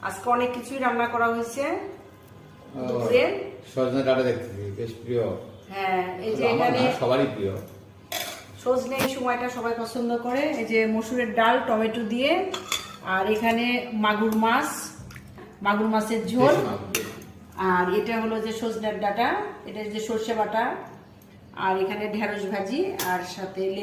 আজকে অনেক কিছুই রান্না করা হয়েছে দুপুরে। সজনে ডাঁটা দেখতেছি, বেশ প্রিয়। হ্যাঁ, এই যে আমার এখানে না, সবারই প্রিয়। সজনে এই সময়টা সবাই পছন্দ করে। এই যে মসুরের ডাল টমেটো দিয়ে, আর এখানে মাগুর মাছের ঝোল, দেশি মাছ। আর এটা হলো যে সজনের ডাঁটা, এটা যে সর্ষে বাটা, আর এখানে ঢেঁড়স ভাজি, আর সাথে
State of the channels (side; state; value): both; identical; correlation 1.00